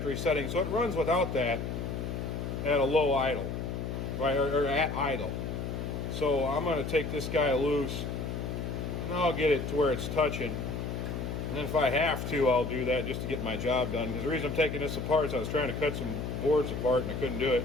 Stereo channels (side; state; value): left; noise; hum, 4 dB below the sound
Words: setting, so it runs without that at a low idle, right, or at idle. So I'm going to take this guy loose, and I'll get it to where it's touching. And then if I have to, I'll do that just to get my job done. Because the reason I'm taking this apart is I was trying to cut some boards apart, and I couldn't do it